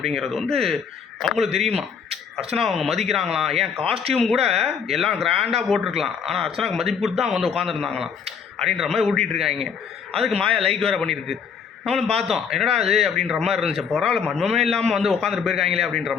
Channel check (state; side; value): quieter; right; 6.6 dB